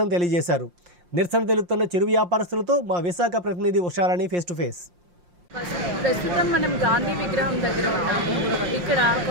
తెలియజేశారు. నిరసన తెలుపుతున్న చిరు వ్యాపారస్తులతో మా విశాఖ ప్రతినిధి ఉషారాణి ఫేస్ టు ఫేస్. ప్రస్తుతం మనం గాంధీ విగ్రహం దగ్గర ఉన్నాము. ఇక్కడ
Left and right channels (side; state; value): left; late; 5.7 ms